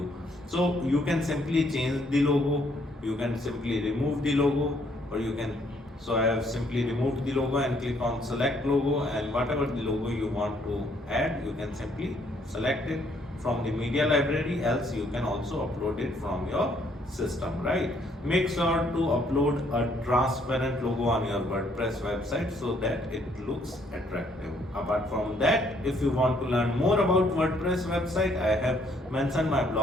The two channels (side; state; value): both; normal; correlation 0.68